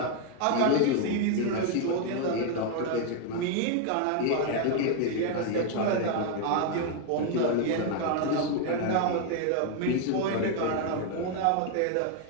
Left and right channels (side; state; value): both; different; correlation 0.01